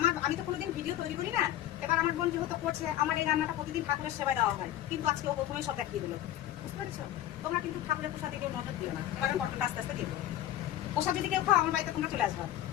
আমি তো কোনোদিন ভিডিও তৈরি করি না। এবার আমার বোন যেহেতু করছে, আমার এই রান্নাটা প্রতিদিন ঠাকুরের সেবায় দেওয়া হয়, কিন্তু আজকে ও প্রথমে সব দেখিয়ে দিল। বুঝতে পেরেছো? তোমরা কিন্তু ঠাকুরের প্রসাদ দিকে নজর দিও না। এবার পটলটা আস্তে আস্তে দিয়ে দেবো। প্রসাদ যদি কেউ খাও, আমার বাড়িতে তোমরা চলে আসবে।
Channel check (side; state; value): right; quieter; 12.8 dB